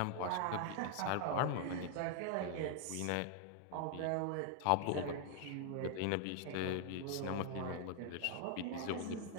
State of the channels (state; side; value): different; both; correlation 0.00